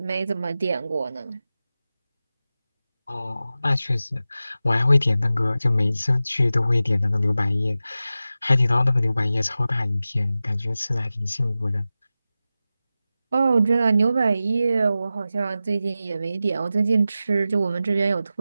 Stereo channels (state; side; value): inverted; both; correlation -0.93